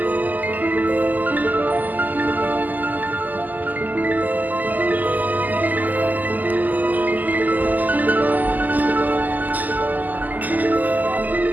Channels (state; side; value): late; left; 0.083 ms